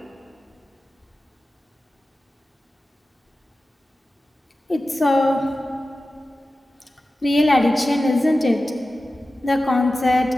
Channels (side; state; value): both; normal; correlation 0.94